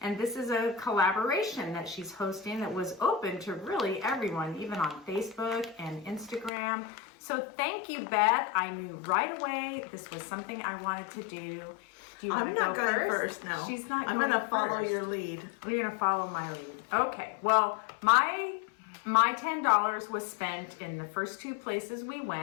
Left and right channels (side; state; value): right; drops out; at 6.5 s